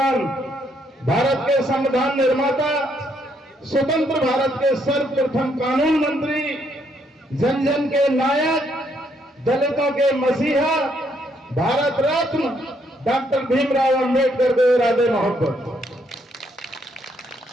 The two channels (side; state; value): both; normal; correlation 0.72